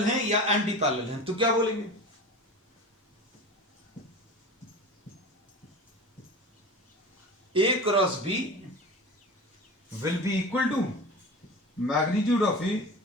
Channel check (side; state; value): both; normal; correlation 0.32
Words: हैं या एंटी पैरेलल हैं तो क्या बोलेंगे, A cross B will be equal to magnitude of A